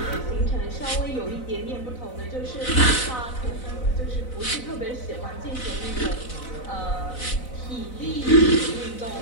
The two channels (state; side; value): late; right; 4.0 ms